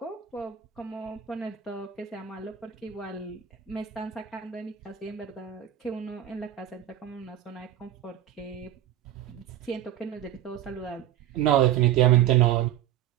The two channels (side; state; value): left; quieter; 11.3 dB